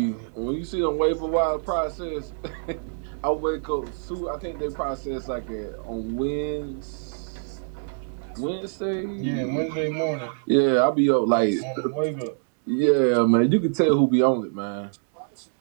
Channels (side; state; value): left; silent; digital silence